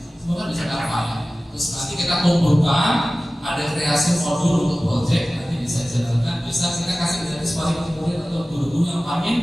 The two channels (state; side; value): normal; both; correlation 0.97